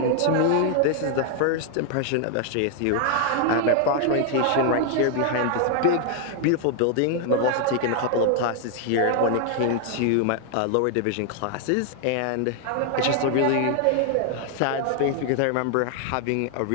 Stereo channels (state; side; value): different; both; correlation 0.00